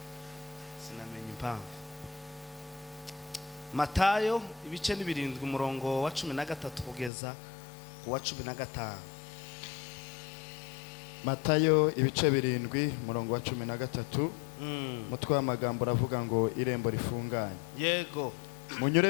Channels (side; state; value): right; drops out; at 7.1 s